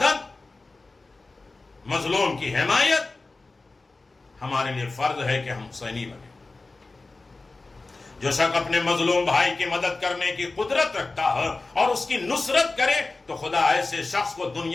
مظلوم کی حمایت ہمارے لیے فرض ہے کہ ہم حسینی بنیں۔ جو شخص اپنے مظلوم بھائی کی مدد کرنے کی قدرت رکھتا ہے اور اس کی نصرت کرے تو خدا ایسے شخص کو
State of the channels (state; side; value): quieter; right; 3.4 dB